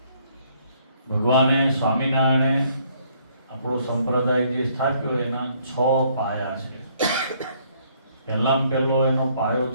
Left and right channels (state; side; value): inverted; both; correlation -0.65